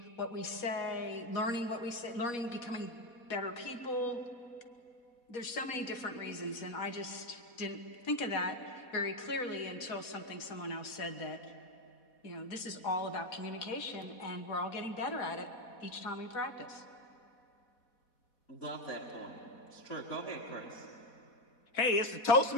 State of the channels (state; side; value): late; right; 4.1 ms